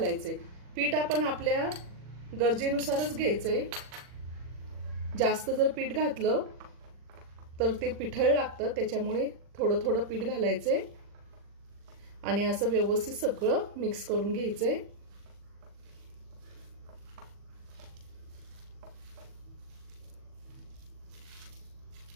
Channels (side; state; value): left; late; 40 ms